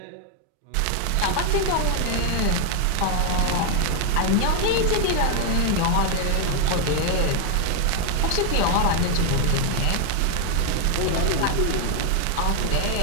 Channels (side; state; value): both; different; correlation 0.00